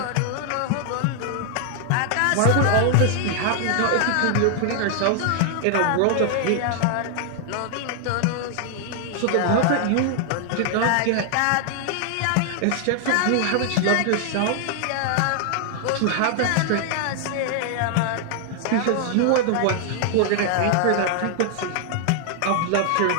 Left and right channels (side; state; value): both; different; correlation 0.00